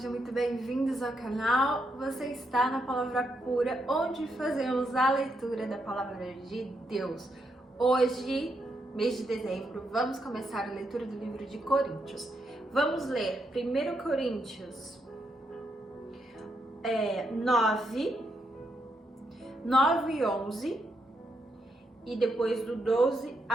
muito bem-vindos ao canal. Você está na Palavra Pura, onde fazemos a leitura da Palavra de Deus. Hoje, mês de dezembro, vamos começar a leitura do livro de Coríntios. Vamos ler 1 Coríntios 9 e 11 e depois do 12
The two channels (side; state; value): both; normal; correlation 0.80